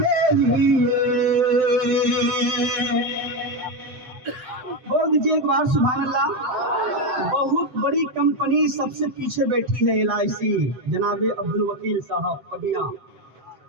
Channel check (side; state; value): left; late; 7.8 ms